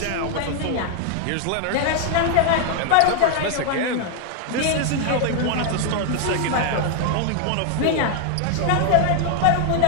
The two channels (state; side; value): different; both; correlation 0.00